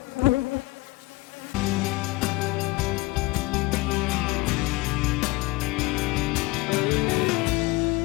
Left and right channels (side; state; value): right; quieter; 21.5 dB